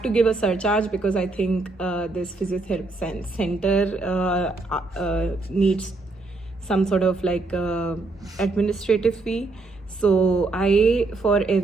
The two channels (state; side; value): quieter; left; 3.4 dB